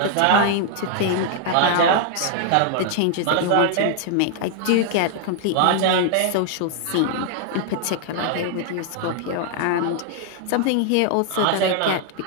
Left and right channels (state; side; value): different; both; correlation 0.00